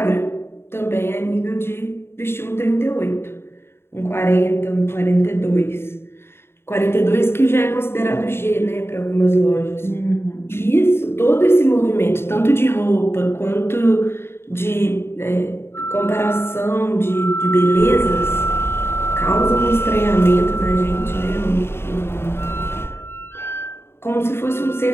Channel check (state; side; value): late; right; 0.12 ms